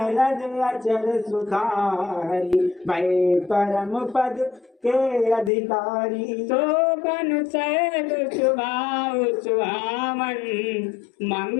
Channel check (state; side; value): drops out; right; at 5.5 s